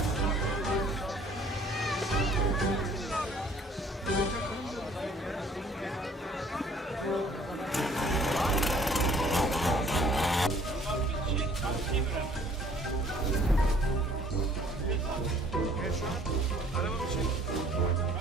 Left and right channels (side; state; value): both; normal; correlation 0.56